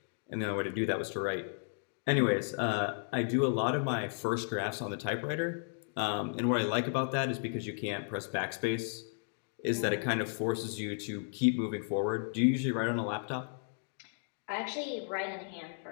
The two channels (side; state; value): right; silent; digital silence